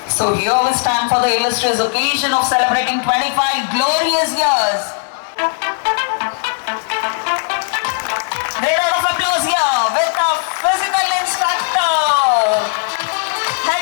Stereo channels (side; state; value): right; silent; 59 dB below the other